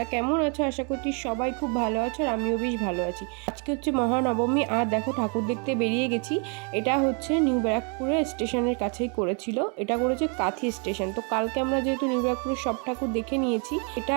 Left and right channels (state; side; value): quieter; left; 37.2 dB